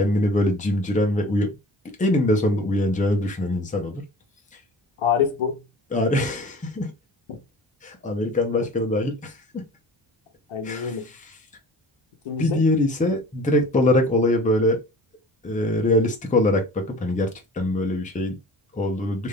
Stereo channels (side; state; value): both; normal; correlation 0.43